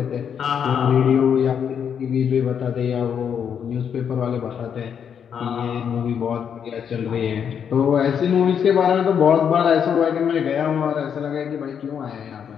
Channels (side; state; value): right; quieter; 7.8 dB